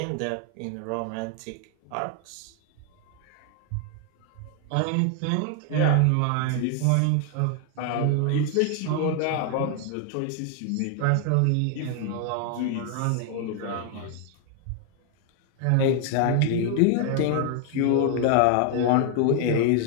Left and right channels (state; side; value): different; both; correlation 0.00